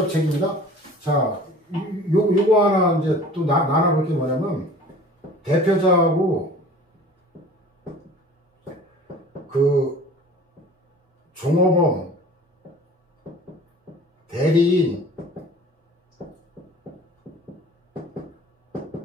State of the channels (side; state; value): both; normal; correlation 0.44